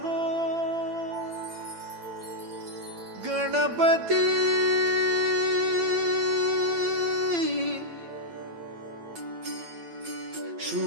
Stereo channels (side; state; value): left; late; 8.8 ms